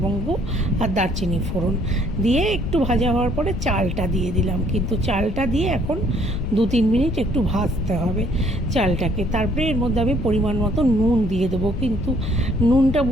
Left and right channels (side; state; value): left; noise; rumble, 6 dB below the sound